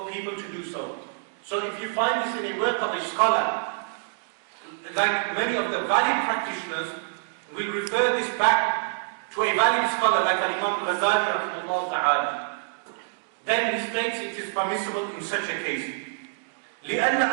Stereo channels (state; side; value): silent; left; digital silence